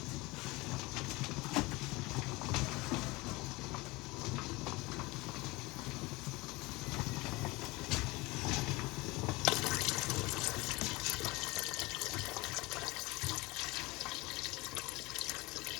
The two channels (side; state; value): right; quieter; 22.6 dB